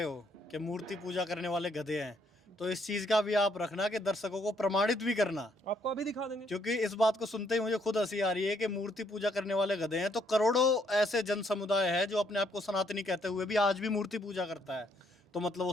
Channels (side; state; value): both; normal; correlation 0.70